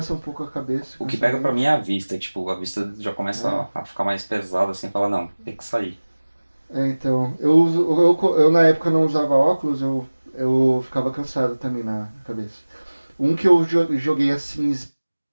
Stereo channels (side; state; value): both; inverted; correlation -1.00